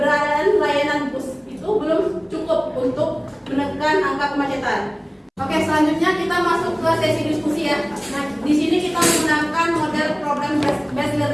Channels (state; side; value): identical; both; correlation 1.00